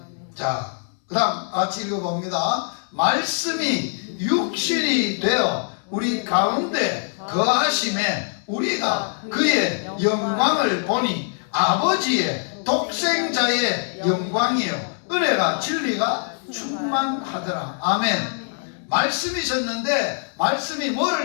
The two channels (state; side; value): silent; right; 63 dB below the other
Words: 자, 그 다음 같이 읽어봅니다. 말씀이 육신이 되어 우리 가운데 거하심에 우리가 그의 영광을 보니 아버지의 독생자의 영광이요 은혜가 진리가 충만하더라. 아멘. 말씀이셨는데 말씀이